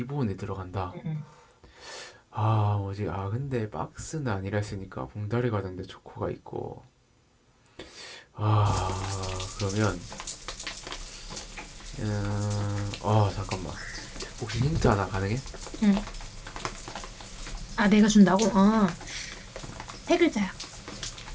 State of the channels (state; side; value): identical; both; correlation 1.00